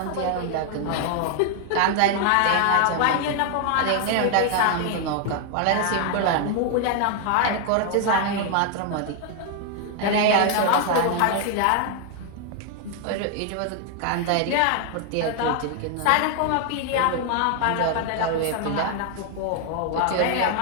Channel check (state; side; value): different; both; correlation 0.00